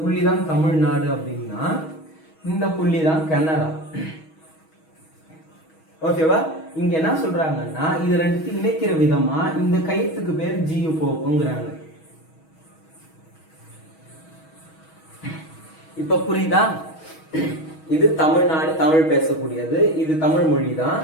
தமிழ்நாடு அப்படின்னா இந்த புள்ளி தான் கனடா. ஓகேவா? இங்க என்ன சொல்றாங்கன்னா இது ரெண்டுத்தையும் இணைக்கிற விதமா இந்த கைத்துக்கு பேர் ஜியு போக்குங்கிறாங்க. இப்ப புரியுதா? இது தமிழ்நாடு, தமிழ் பேசக்கூடியது, இது தமிழ் மொழி தான்.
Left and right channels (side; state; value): right; late; 6.3 ms